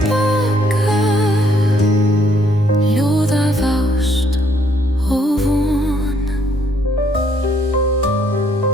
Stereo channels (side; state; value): both; normal; correlation 0.68